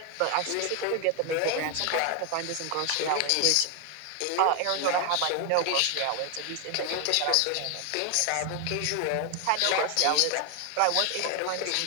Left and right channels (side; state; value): both; different; correlation 0.01